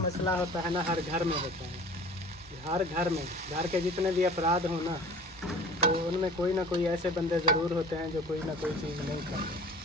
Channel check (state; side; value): normal; both; correlation 0.44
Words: मसला होता है ना हर घर में होता है, हर घर में, घर के जितने भी अपराध हो ना, तो उनमें कोई ना कोई ऐसे बंदे ज़रूर होते हैं जो कोई ना कोई चीज़ नहीं खाते,